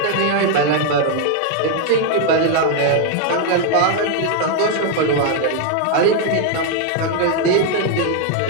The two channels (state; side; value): different; both; correlation 0.00